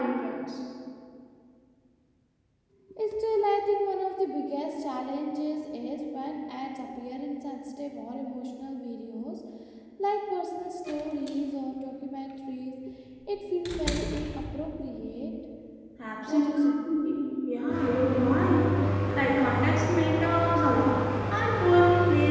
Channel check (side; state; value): both; identical; correlation 1.00